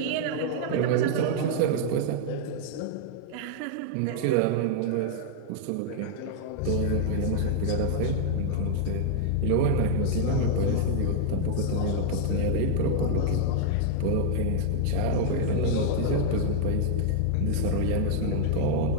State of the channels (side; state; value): both; different; correlation -0.01